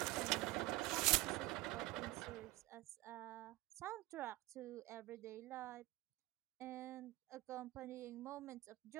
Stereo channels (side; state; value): left; quieter; 19.5 dB